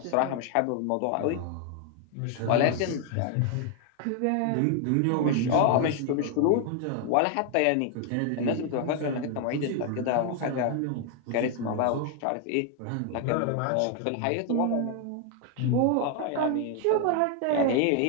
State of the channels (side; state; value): both; different; correlation 0.01